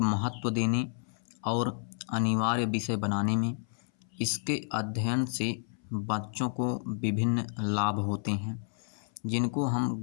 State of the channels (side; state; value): right; silent; 57 dB below the other